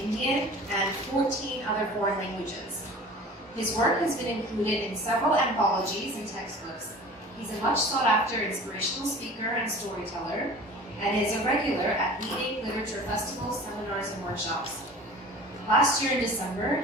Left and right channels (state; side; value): normal; both; correlation 0.41